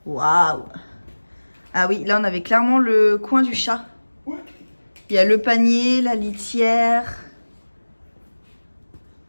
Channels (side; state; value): both; inverted; correlation -1.00